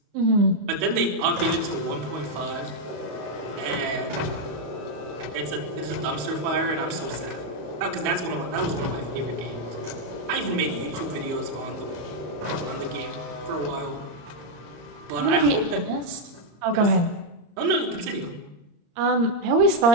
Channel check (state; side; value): late; left; 34 ms